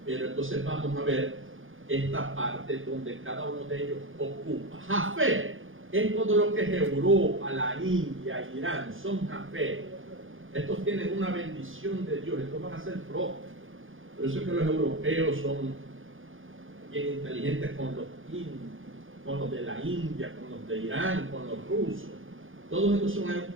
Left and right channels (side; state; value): left; late; 0.58 ms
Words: pero entonces vamos a ver esta parte donde cada uno de ellos ocupa. Jafet es todo lo que es Europa, la India, Irán, son Jafet. Estos tienen una bendición de Dios, estos van a ser prósperos. Por eso es que los europeos son bien inteligentes con los de la India, con los de Irán, con los rusos. Todos estos son